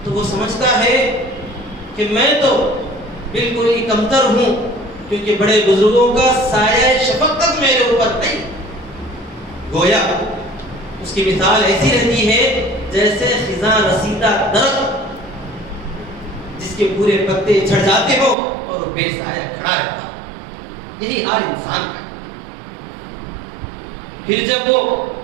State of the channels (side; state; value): left; drops out; at 18.4 s